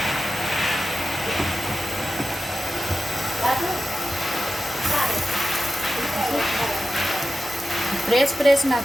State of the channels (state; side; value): normal; both; correlation 0.92